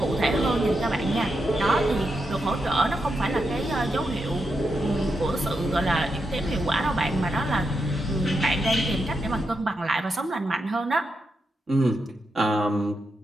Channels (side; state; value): both; normal; correlation 0.85